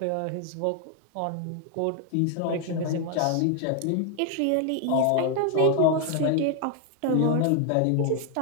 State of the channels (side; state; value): both; different; correlation 0.00